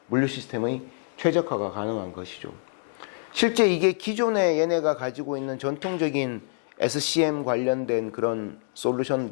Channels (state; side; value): silent; right; 61 dB below the other